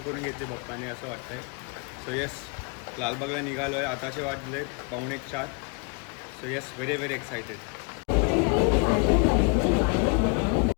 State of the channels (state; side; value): quieter; right; 35.5 dB